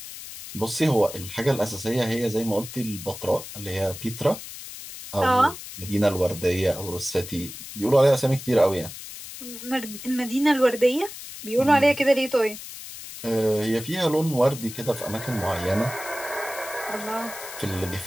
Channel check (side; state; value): left; noise; hiss, 12 dB below the sound